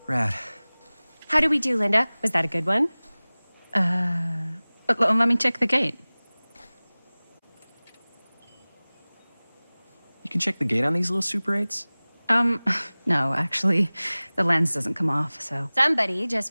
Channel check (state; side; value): inverted; both; correlation -1.00